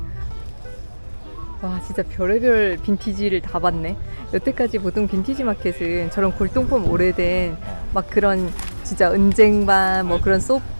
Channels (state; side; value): inverted; both; correlation -1.00